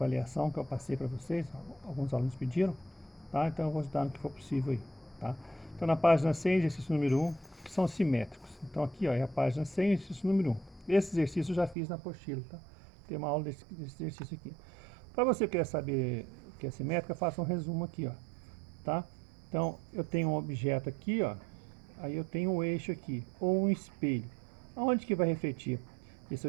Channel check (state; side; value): drops out; left; at 11.8 s